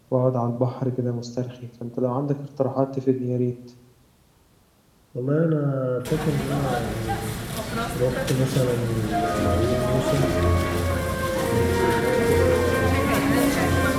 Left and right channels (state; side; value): identical; both; correlation 1.00